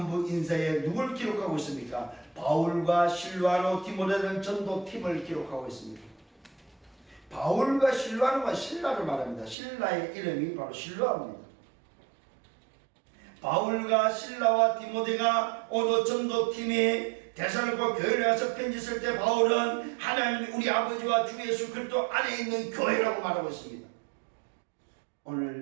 인사에 누굴 기록하고 있습니까? 바울과 실로아노 디모데는 전도팀을 기록하고 있습니다. 바울과 실로아노가 신라를 말합니다. 신라의 이름이 바로 실로아입니다. 바울과 실라와 디모데가 오늘 전도팀이 데살로니가 교회를 가서 편지 쓸 때 바울은 하나님 우리 아버지와 주 예수 그리스도 안에 있는 교회라고 말하고 있습니다.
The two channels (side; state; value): left; drops out; at 9.6 s